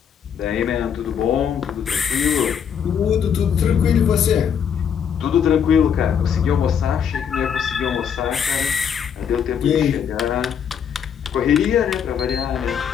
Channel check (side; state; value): right; quieter; 7.9 dB